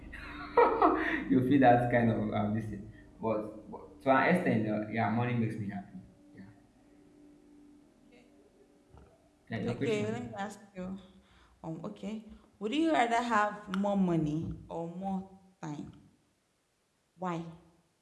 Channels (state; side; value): identical; both; correlation 1.00